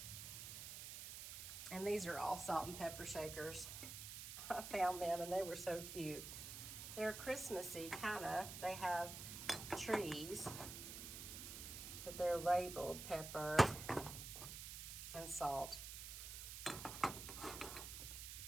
And these are all salt and pepper shakers. I found them and they were so cute. They're Christmassy, kind of. They have trees, but they're labeled pepper and salt.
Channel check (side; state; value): right; noise; hiss, 8 dB below the sound